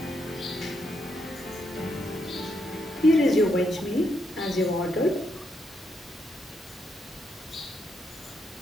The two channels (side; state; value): both; normal; correlation 0.79